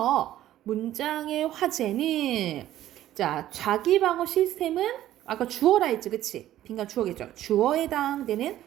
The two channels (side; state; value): left; quieter; 13.2 dB